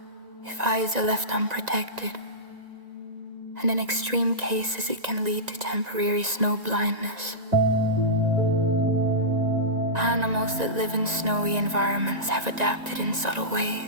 if eyes are left unprotected, and in extreme cases it can lead to temporary snow blindness. Animals that live in snowy environments have adapted in subtle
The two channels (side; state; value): left; late; 1.9 ms